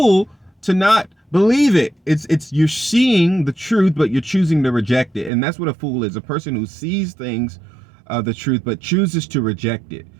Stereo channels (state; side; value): drops out; left; at 5.3 s